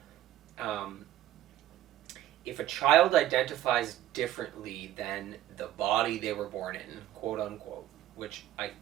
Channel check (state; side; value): quieter; left; 13.4 dB